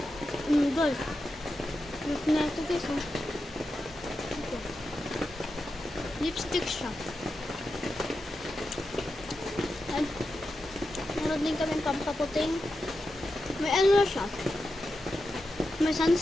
Guys. Look na ito guys. Ito. Lipstick siya. And meron din kami pampaputing. May ano siya. May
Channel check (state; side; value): normal; both; correlation 0.89